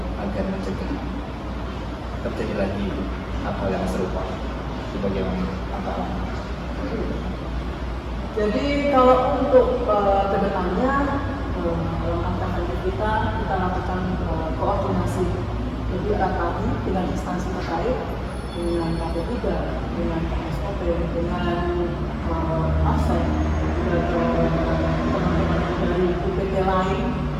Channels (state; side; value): identical; both; correlation 1.00